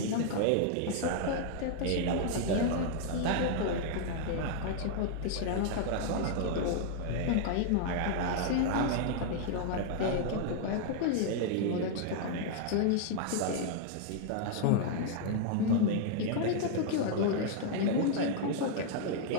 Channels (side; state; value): both; different; correlation -0.01